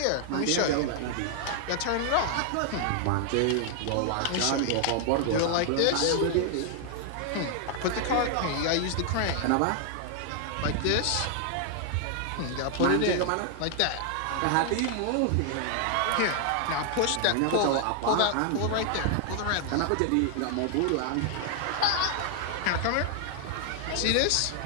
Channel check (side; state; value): both; different; correlation 0.00